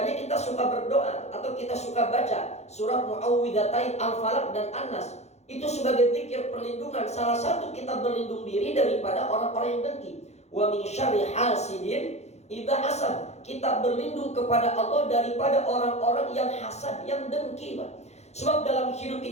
kita suka berdoa atau kita suka baca surat Muawwidzatain Al-Falaq dan An-Nas. Itu sebagai zikir perlindungan. Salah satu kita berlindung diri daripada orang-orang yang dengki. Wa min syarri hasidin idza hasad. Kita berlindung kepada Allah daripada orang-orang yang hasad, yang dengki, Pak. Sebab dalam hidup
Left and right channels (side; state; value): right; late; 0.32 ms